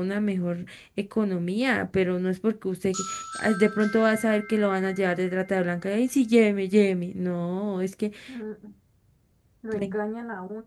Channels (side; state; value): both; identical; correlation 1.00